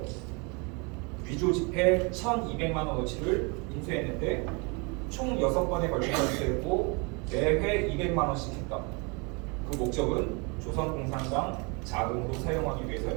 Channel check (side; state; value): left; quieter; 31.1 dB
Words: 위조 지폐 1,200만 원어치를 인수했는데 총 6번에 걸쳐서 인수했고 매회 200만 원씩 했다. 그 목적은 조선공산당 자금으로 사용하기